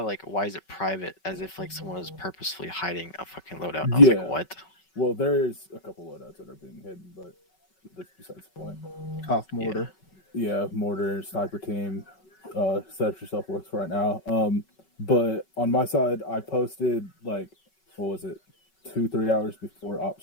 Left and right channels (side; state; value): right; late; 5.3 ms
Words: why is it private? As if like someone was purposefully hiding a fucking loadout. And I was like, what? Well, there's a couple loadouts that are being hidden, but that's besides the point. Off mortar. Yeah, mortar, sniper team, set yourself works right now. But on my side, I posted like, what was it, 2-3 hours before op